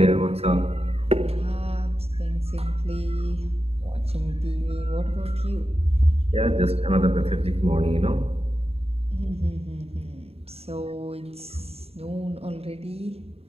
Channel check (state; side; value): late; left; 0.29 ms